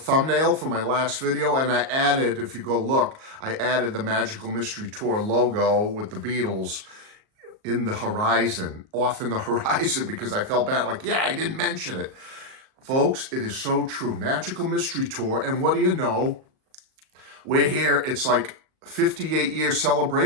for my last video and I added, if you go look, I added the Magical Mystery Tour logo with the Beatles in the horizon, off in the horizon, because I felt bad, like, yeah, I didn't mention it. Folks, it is so true. Magical Mystery Tour, and what do you know? We're here, it's like 58-year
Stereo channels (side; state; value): left; late; 38 ms